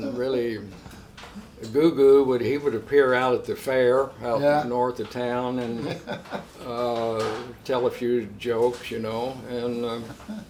really. Goo Goo would appear out at the fair out north of town and tell a few jokes, and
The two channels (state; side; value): identical; both; correlation 1.00